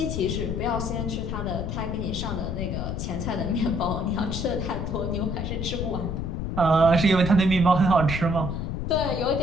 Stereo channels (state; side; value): noise; left; rumble, 3 dB below the sound